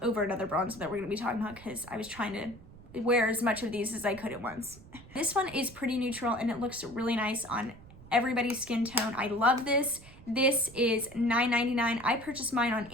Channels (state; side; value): noise; right; rumble, 20 dB below the sound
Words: over another bronzer that we're gonna be talking about because I was trying to wear as much of these as I could at once. This one is pretty neutral and it looks really nice on everybody's skin tone. I love this. This is $9.99. I purchased mine on